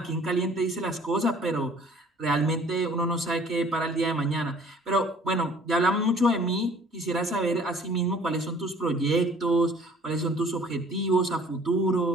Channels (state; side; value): normal; both; correlation 0.53